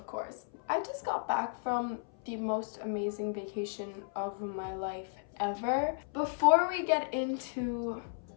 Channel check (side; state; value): right; silent; 55 dB below the other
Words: course. I just got back from the most amazing vacation of my life ever. Before we get into